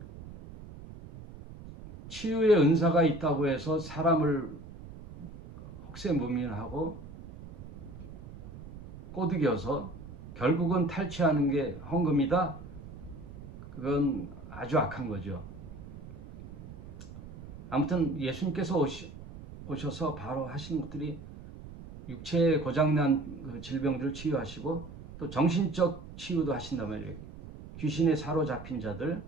치유의 은사가 있다고 해서 사람을 혹세무민하고 꼬드겨서 결국은 탈취하는 게 헌금이다. 그건 아주 악한 거죠. 아무튼 예수님께서 오셔서 바로 하시는 것들이 육체에 고장난 그 질병들을 치유하시고 또 정신적 치유도 하신단 말이에요. 귀신에 사로잡힌 자들,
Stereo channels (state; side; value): noise; right; rumble, 14 dB below the sound